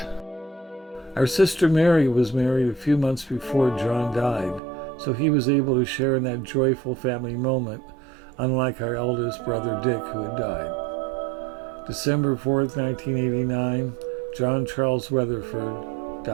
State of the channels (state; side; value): drops out; left; at 4.6 s